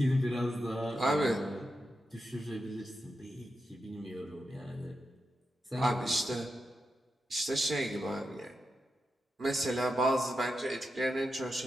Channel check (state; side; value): normal; both; correlation 0.88